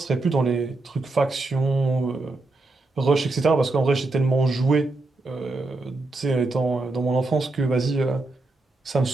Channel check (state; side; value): quieter; left; 3.1 dB